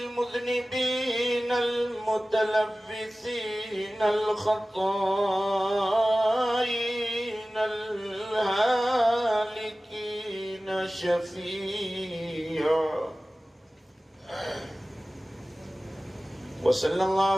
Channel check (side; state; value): both; normal; correlation 0.97